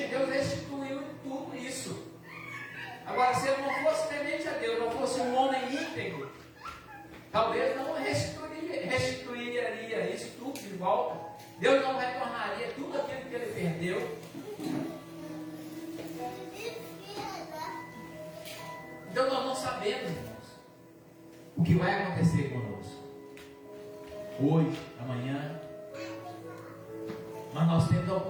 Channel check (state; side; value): identical; both; correlation 1.00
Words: Deus restituiu tudo isso. Agora, se ele não fosse temente a Deus, não fosse um homem íntegro, talvez não restituiria isso tudo de volta. Deus não retornaria tudo aquilo que ele perdeu. Então nós não sabemos, irmãos, o que vai acontecer conosco hoje, amanhã. Mas nós temos a